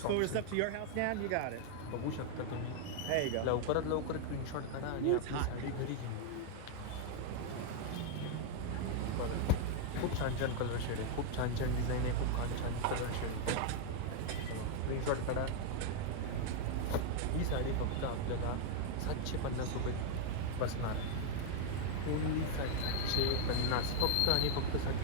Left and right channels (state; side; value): different; both; correlation 0.00